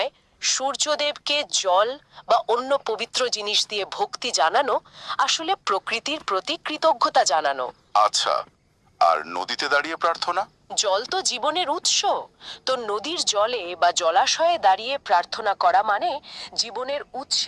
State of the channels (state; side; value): identical; both; correlation 1.00